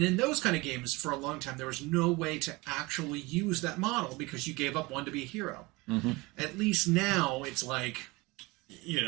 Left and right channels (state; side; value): quieter; left; 23.5 dB